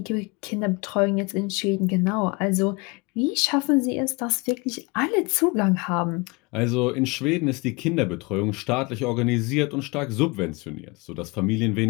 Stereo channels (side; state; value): right; quieter; 27.3 dB